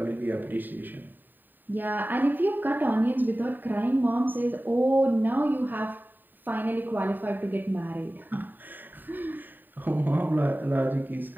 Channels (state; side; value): late; left; 0.091 ms